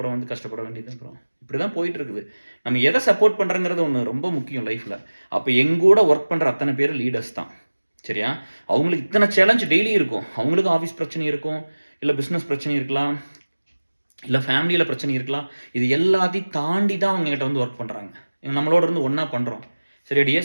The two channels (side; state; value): both; inverted; correlation -1.00